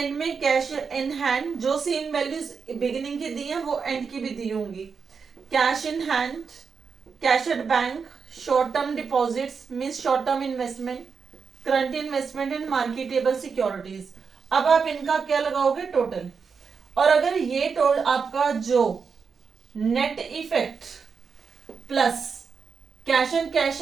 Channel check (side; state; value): left; quieter; 5.6 dB